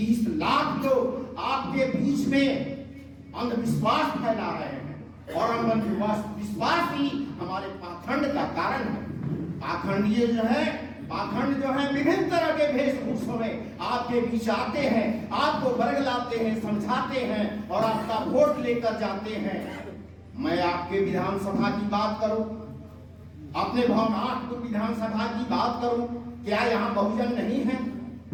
लाख लोग आपके बीच में अंधविश्वास फैला रहे हैं और अंधविश्वास ही हमारे पाखंड का कारण है। पाखंडीय जो है, पाखंड जो है विभिन्न तरह के वेशभूषों में आपके बीच आते हैं, आपको बरगलाते हैं, समझाते हैं और आपका वोट लेकर जाते हैं। मैं आपके विधानसभा की बात करूं, अपने भवनाथ विधानसभा की बात करूं, क्या यहाँ बहुजन नहीं है?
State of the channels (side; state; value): both; identical; correlation 1.00